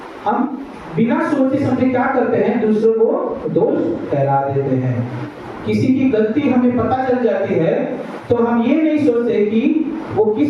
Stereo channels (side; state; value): both; identical; correlation 1.00